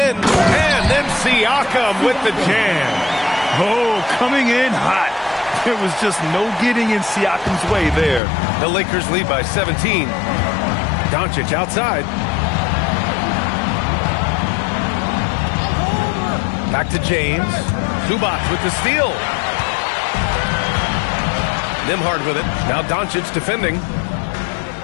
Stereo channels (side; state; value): right; drops out; at 8.2 s